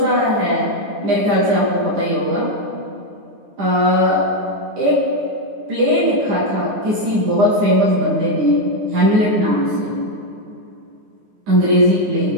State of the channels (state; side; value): late; left; 9.9 ms